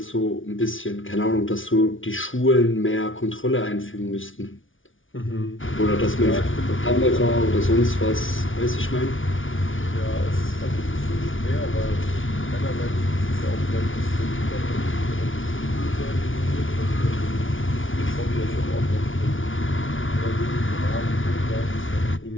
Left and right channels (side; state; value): right; late; 0.57 ms